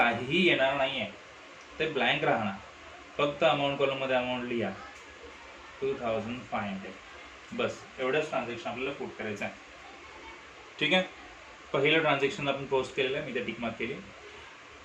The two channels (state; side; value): identical; both; correlation 1.00